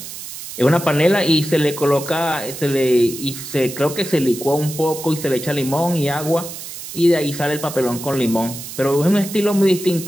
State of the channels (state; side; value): noise; right; hiss, 11 dB below the sound